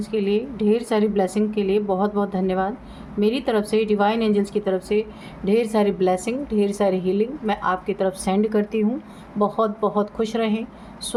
के लिए, ढेर सारी ब्लेसिंग के लिए बहुत बहुत धन्यवाद। मेरी तरफ से, डिवाइन एंजल्स की तरफ से ढेर सारी ब्लेसिंग, ढेर सारी हीलिंग मैं आपकी तरफ सेंड करती हूँ। बहुत बहुत खुश रहें,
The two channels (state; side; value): identical; both; correlation 1.00